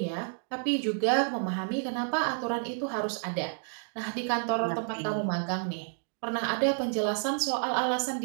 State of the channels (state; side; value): silent; left; 58 dB below the other